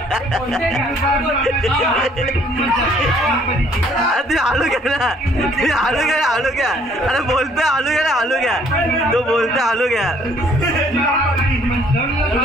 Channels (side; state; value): both; normal; correlation 0.62